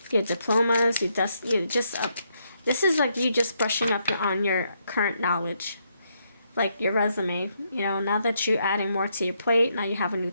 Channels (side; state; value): both; inverted; correlation -0.76